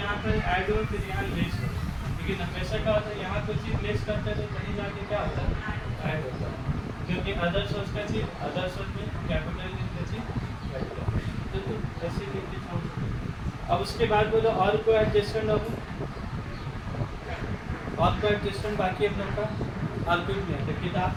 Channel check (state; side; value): identical; both; correlation 1.00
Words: यहाँ पर ऐड हो फिर यहाँ लेस हो, लेकिन हमेशा क्या होता है यहाँ कोई चीज़ लेस करते हैं तो कहीं जाके क्या होता है ऐड होता है, क्योंकि अदर सोर्स का चीज़ अदर सोर्स में कैपिटल का चीज़ ऐड होता है, तो ऐसे लेके छोड़ देते। अब उसके बाद बोलो और कोई एडजस्टमेंट होगा, और कोई एडजस्टमेंट बाकी है हम लोग का और कुछ नहीं है। तो किताब